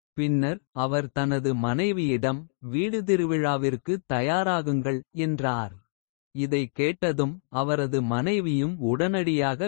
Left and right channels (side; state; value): right; silent; digital silence